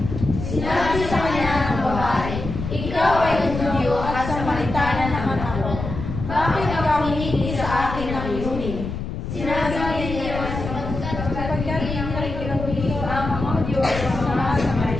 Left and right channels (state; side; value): noise; left; rumble, 6 dB below the sound